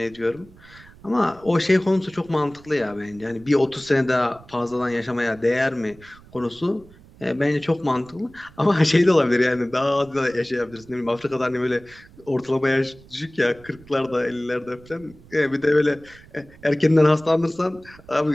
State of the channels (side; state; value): right; noise; rumble, 23 dB below the sound